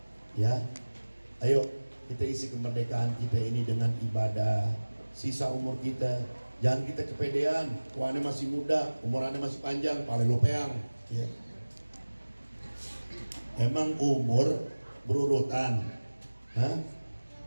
ya. Ayo kita isi kemerdekaan kita ini dengan ibadah. Sisa umur kita jangan kita kepedean. Tuannya masih muda, umurannya masih panjang, pale lopeang, ya. Emang umur berurutan? Hah?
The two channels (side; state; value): both; inverted; correlation -1.00